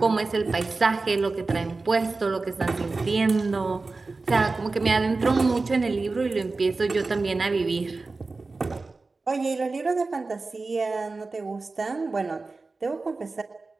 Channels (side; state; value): left; quieter; 3.7 dB